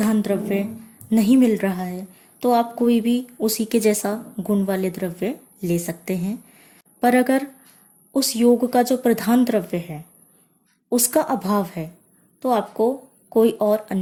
द्रव्य नहीं मिल रहा है तो आप कोई भी उसी के जैसा गुण वाले द्रव्य ले सकते हैं। पर अगर उस योग का जो प्रधान द्रव्य है उसका अभाव है तो आपको कोई और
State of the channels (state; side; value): identical; both; correlation 1.00